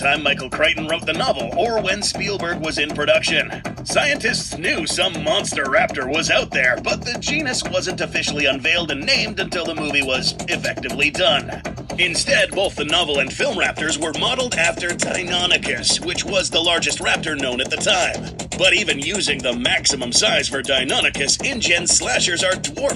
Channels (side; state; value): both; identical; correlation 1.00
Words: Michael Crichton wrote the novel or when Spielberg was in production. Scientists knew some monster raptor was out there, but the genus wasn't officially unveiled and named until the movie was effectively done. Instead, both the novel and film raptors were modeled after Deinonychus, which was the largest raptor known at the time. But even using the maximum size for Deinonychus, InGen slashers are